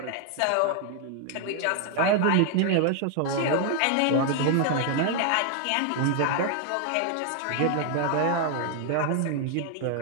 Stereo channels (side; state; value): both; different; correlation 0.00